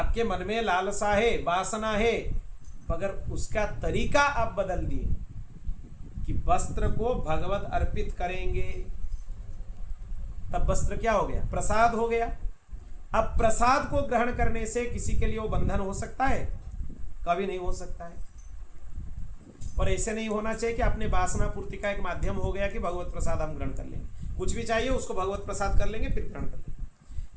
मन में लालसा है, वासना है, मगर उसका तरीका आप बदल दिए कि वस्त्र को भगवत अर्पित करेंगे, तब वस्त्र क्या हो गया? प्रसाद हो गया। अब प्रसाद को ग्रहण करने से किसी के लिए वो बंधन हो सकता है? कभी नहीं हो सकता है। और ऐसे नहीं होना चाहिए कि अपने वासना पूर्ति का एक माध्यम हो गया कि भगवत प्रसाद हम ग्रहण कर लेंगे, कुछ भी चाहिए उसको भगवत प्रसाद कर लेंगे फिर ग्रहण कर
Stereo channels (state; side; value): identical; both; correlation 1.00